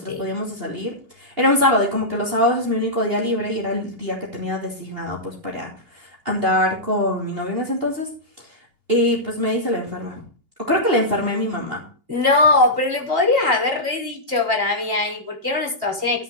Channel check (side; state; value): left; late; 2.8 ms